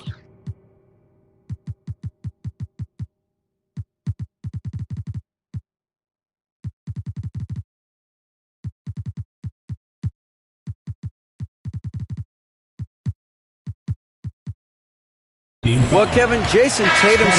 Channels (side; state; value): both; identical; correlation 1.00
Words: Well, Kevin, Jason Tatum